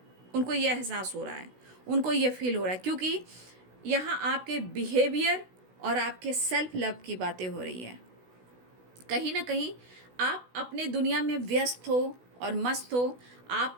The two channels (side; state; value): left; late; 16 ms